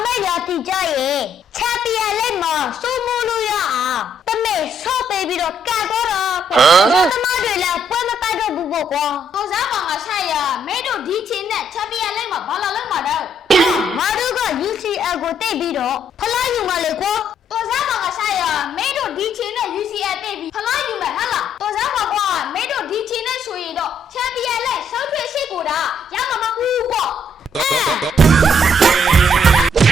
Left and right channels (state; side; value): normal; both; correlation 0.69